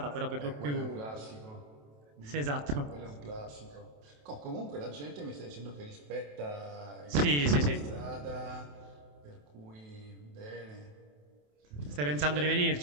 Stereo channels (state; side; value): late; left; 27 ms